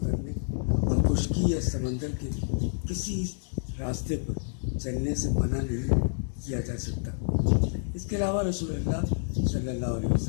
اور خشکی یا سمندر کے کسی راستے پر چلنے سے منع نہیں کیا جا سکتا۔ اس کے علاوہ رسول اللہ صلی اللہ علیہ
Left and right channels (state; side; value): silent; right; digital silence